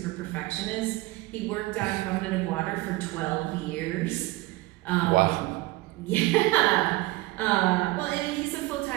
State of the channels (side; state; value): left; quieter; 20.3 dB